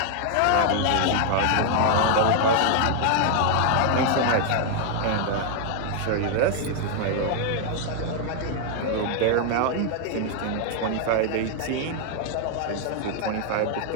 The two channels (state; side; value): different; both; correlation 0.00